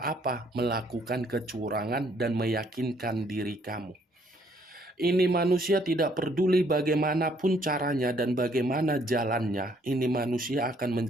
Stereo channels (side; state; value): both; normal; correlation 0.66